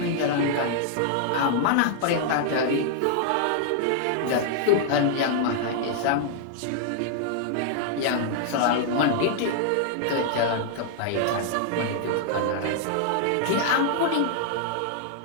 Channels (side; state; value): both; different; correlation -0.01